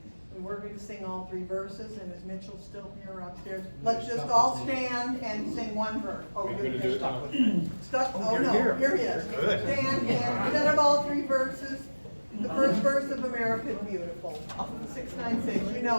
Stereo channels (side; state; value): both; inverted; correlation -1.00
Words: We're going to sing all 3 verses, and is Mitchell still here upstairs? Let's just all stand and sing one verse. Oh, you're stuck with me. Stuck? Oh, no, here he is. Stand and instead of all 3 verses, the first verse of America is Beautiful. 696, you